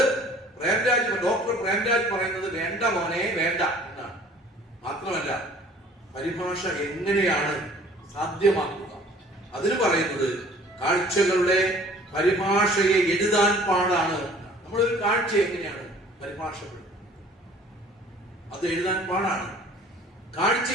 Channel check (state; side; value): normal; both; correlation 0.52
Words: ഡോക്ടർ പ്രേംരാജ് പറയുന്നത് വേണ്ട മോനെ, വേണ്ട എന്നാണ്. മാത്രമല്ല, പരിഭാഷ എങ്ങനെയാണ് സാധ്യമാക്കുക? അതിന് പറയുന്നത് കാഴ്ചകളുടെ പരിഭാഷയെ എഴുതാൻ പാടാണ്. നമ്മളൊരു കാഴ്ച എങ്ങനെയാണ് പരിഭാഷപ്പെടുന്നത്? അത് എഴുതാൻ പാടാണ്.